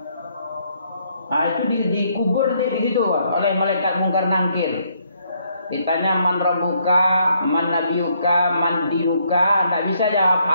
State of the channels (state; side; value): inverted; both; correlation -0.71